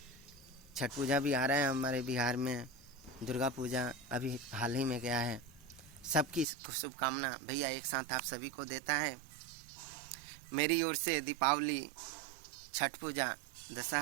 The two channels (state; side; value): drops out; left; at 6.5 s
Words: छठ पूजा भी आ रहा है हमारे बिहार में, दुर्गा पूजा अभी हाल ही में गया है। सबकी शुभकामना भैया एक साथ आप सभी को देता है। मेरी ओर से दीपावली, छठ पूजा,